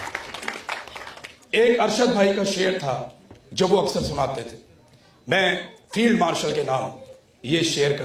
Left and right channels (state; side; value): identical; both; correlation 1.00